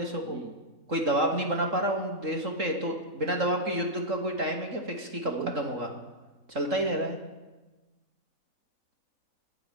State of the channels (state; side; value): late; left; 3.7 ms